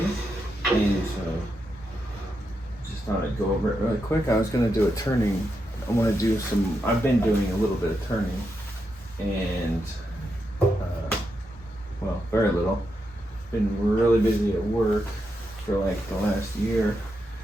and so just thought I'd go over it really quick. I was going to do a turning. I want to do some, I've been doing a little bit of turning, and well, very little. Been really busy at work for like the last year.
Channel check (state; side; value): normal; both; correlation 0.84